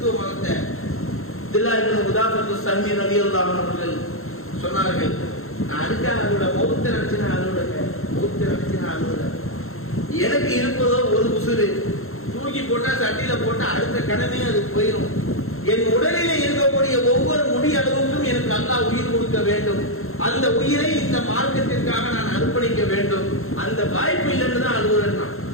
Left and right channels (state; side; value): late; right; 0.62 ms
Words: மதத்தை. அப்துல்லாஹ் இப்னு குதாஃபத்து ஸஹ்மி ரலியல்லாஹு அன்ஹு அவர்கள் சொன்னார்கள், நான் அதுக்காக அதோட மௌத்தை நினைச்சு நான் அழுகுறேன். எனக்கு இருப்பதோ ஒரு உசுறு, தூக்கி போட்டா சட்டியில போட்டா அடுத்த கடனே அது போயிடும். என் உடலிலே இருக்கக்கூடிய ஒவ்வொரு முடி அளவுக்கும் எனக்கு அல்லாஹ் உயிர் கொடுக்க வேண்டும். அந்த உயிரை இந்த மார்க்கத்திற்காக நான் அர்ப்பணிக்க வேண்டும். அந்த வாய்ப்பு இல்லைன்னு தான் அழுகுறேன்.